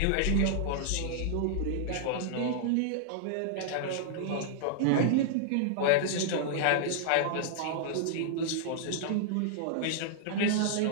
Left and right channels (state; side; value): different; both; correlation -0.01